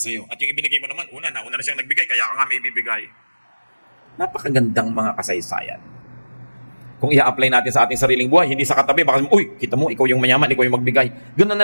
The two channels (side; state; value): both; inverted; correlation -1.00